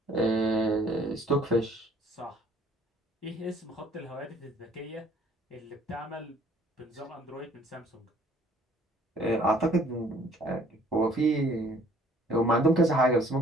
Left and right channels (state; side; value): normal; both; correlation 0.58